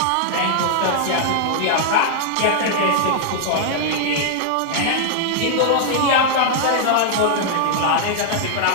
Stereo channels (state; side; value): different; both; correlation -0.01